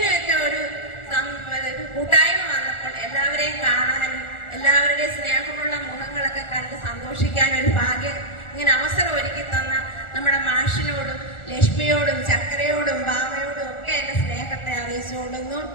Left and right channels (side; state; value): right; late; 1.4 ms